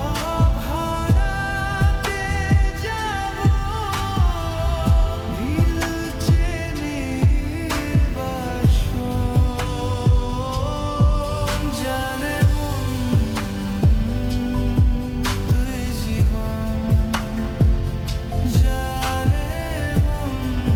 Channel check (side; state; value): both; identical; correlation 1.00